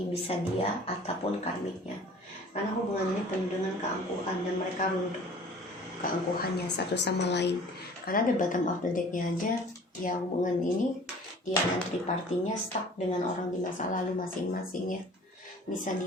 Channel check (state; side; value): normal; both; correlation 0.47